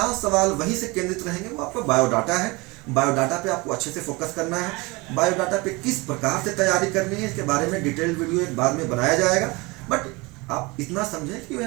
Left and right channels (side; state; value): left; quieter; 25.0 dB